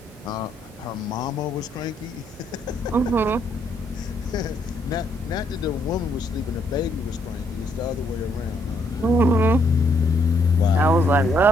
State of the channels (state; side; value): normal; both; correlation 0.72